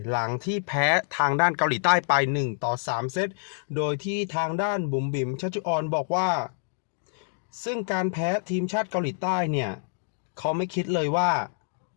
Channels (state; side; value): silent; right; digital silence